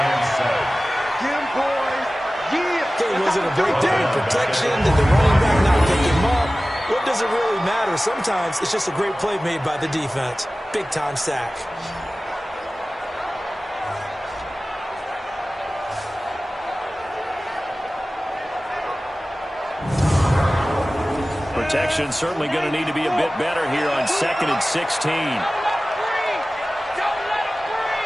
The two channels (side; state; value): both; normal; correlation 0.97